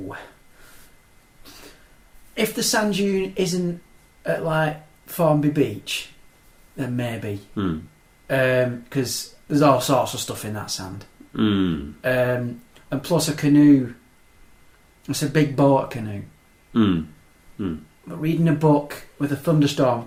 If the sand dune isn't at like Formby Beach, then maybe. Because there's all sorts of stuff in that sand. And plus a canoe, it's a big boat canoe. But reading a book with a thunderstorm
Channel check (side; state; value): both; identical; correlation 1.00